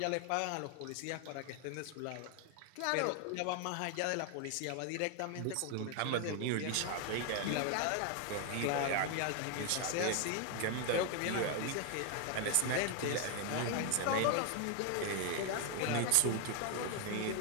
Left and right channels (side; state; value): both; different; correlation 0.01